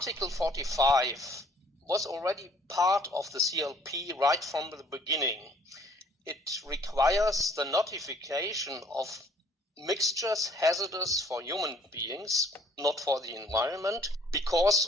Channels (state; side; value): normal; both; correlation 0.58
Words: 45 was already part of the CLP right from the beginning. It requires the notification of mixtures hazardous for human beings, not for the environment,